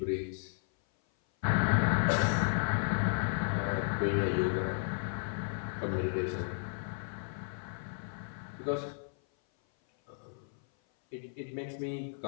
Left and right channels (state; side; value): silent; right; 55 dB below the other